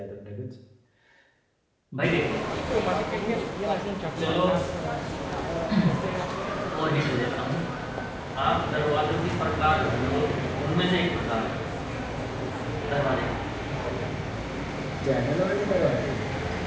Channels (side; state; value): both; identical; correlation 1.00